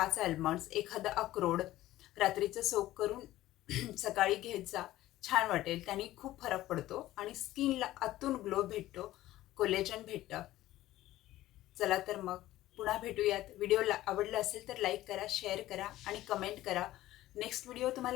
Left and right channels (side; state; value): right; quieter; 15.4 dB